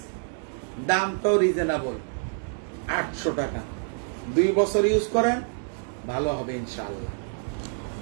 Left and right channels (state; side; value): silent; left; 57 dB below the other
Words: দামটাও রিজনেবল, 800 টাকা। 2 বছর ইউজ করেন, ভালো হবে ইনশাআল্লাহ।